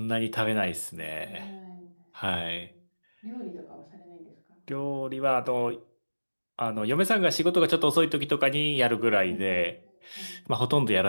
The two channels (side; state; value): both; inverted; correlation -1.00